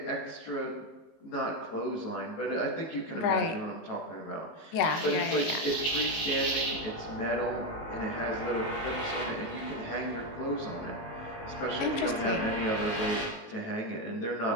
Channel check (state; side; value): late; right; 19 ms